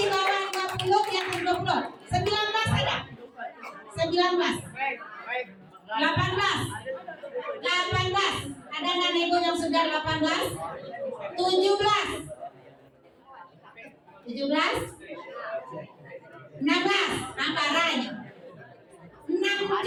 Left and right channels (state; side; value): identical; both; correlation 1.00